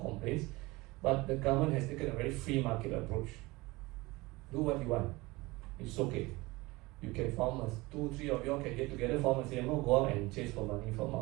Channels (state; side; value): quieter; left; 22.0 dB